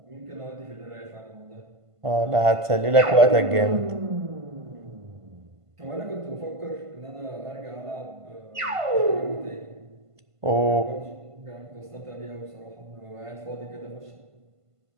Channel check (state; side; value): late; left; 1.5 ms